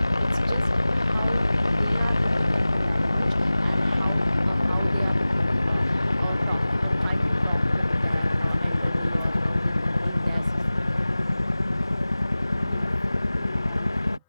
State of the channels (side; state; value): both; inverted; correlation -0.97